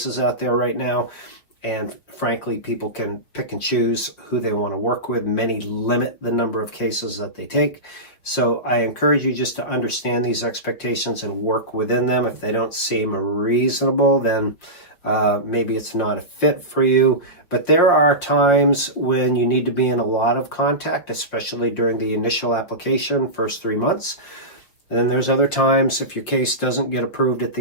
out there right now. And frankly, people can pick and choose who they want to work with. Many limit the number of cases that they take. So I encourage you just to understand these expectations and work within them. If they don't seem reasonable, then maybe it's not a fit for you. But there are times when you need to be in a lot of contact, especially during the initial application, first 3 months. And then there's other times, if your case doesn't get approved at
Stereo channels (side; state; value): right; late; 5.9 ms